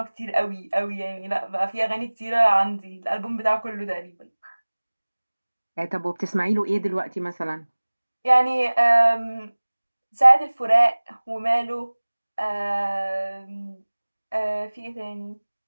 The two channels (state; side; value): inverted; both; correlation -1.00